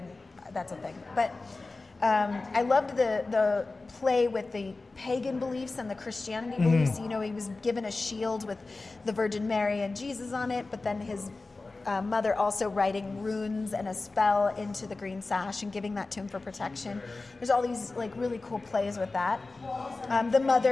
that's a thing. But I loved the play with the pagan beliefs and the Christianity beliefs. He was given a shield with the Virgin Mary and Jesus on it, but then his mother also writing runes and a spell into the green sash and giving that to him for protection. There's all these like really cool plays with that. The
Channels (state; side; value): quieter; right; 3.5 dB